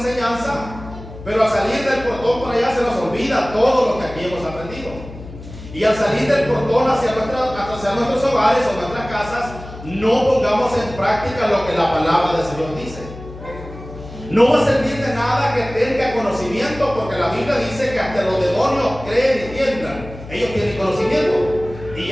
pero al salir del portón por allá se nos olvida todo lo que aquí hemos aprendido. Y al salir del portón hacia nuestros hogares o nuestras casas, no pongamos en práctica lo que la palabra del Señor dice. No va a servir de nada que tenga conocimiento, porque la Biblia dice que hasta los demonios creen y tiemblan. Ellos tienen conocimiento y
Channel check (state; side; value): noise; left; hum, 14 dB below the sound